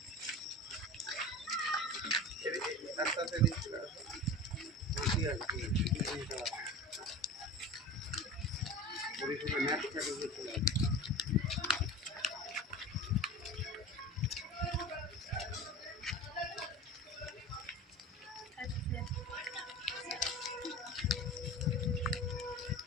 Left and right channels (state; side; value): normal; both; correlation 0.35